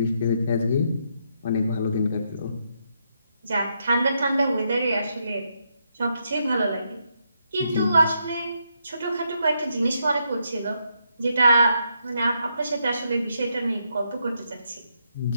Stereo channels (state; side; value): inverted; both; correlation -0.79